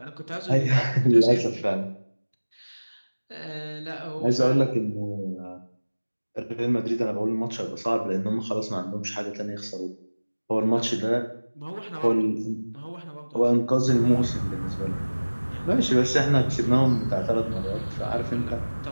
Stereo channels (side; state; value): both; inverted; correlation -1.00